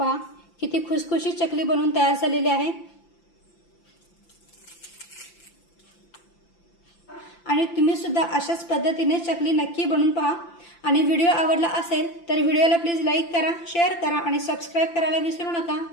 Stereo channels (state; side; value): late; right; 5.9 ms